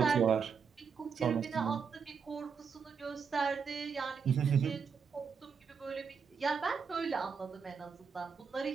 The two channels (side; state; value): left; quieter; 6.1 dB